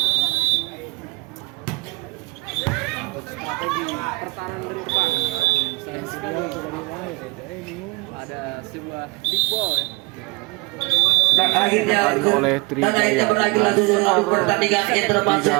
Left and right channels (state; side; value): quieter; left; 24.7 dB